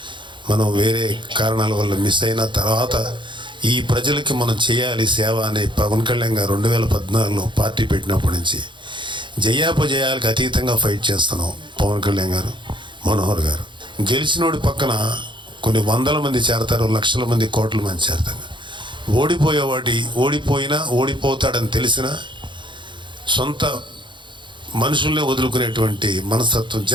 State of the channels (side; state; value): left; late; 0.23 ms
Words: మనం వేరే కారణాల వల్ల మిస్ అయిన తర్వాత ఈ ప్రజలకి మనం చేయాలి సేవ అనే పవన్ కళ్యాణ్ గారు 2014లో పార్టీ పెట్టినప్పటి నుంచి జయాపజయాలకు అతీతంగా ఫైట్ చేస్తున్నాం. పవన్ కళ్యాణ్ గారు, మనోహర్ గారు గెలిచినోడి పక్కన కొన్ని వందల మంది చేరతారు, లక్షల మంది, కోట్ల మంది చేరతారు. ఓడిపోయినా ఓడిపోతాడని తెలిసిన సొంత మనుషుల్నే వదులుకునేటువంటి మనస్తత్వం